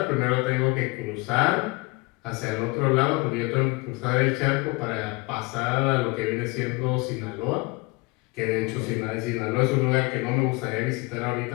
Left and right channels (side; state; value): right; quieter; 25.6 dB